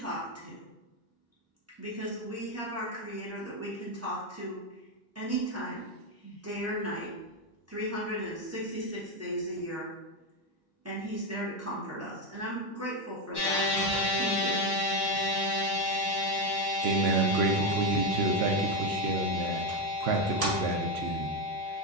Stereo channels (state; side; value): normal; both; correlation 0.09